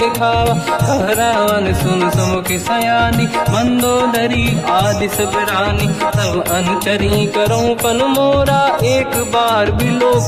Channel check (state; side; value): identical; both; correlation 1.00